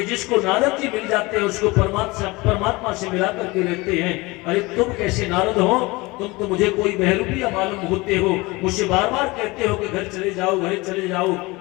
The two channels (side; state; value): right; quieter; 23.1 dB